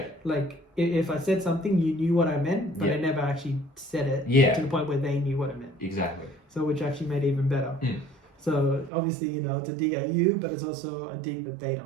Like if I said something, you knew what I meant, but I never actually said it. Yeah. To the point where they knew what I meant. Exactly. So which actually made it even better. So obviously, it's a dig at you, but it's also a dig that they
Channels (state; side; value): drops out; left; at 8.9 s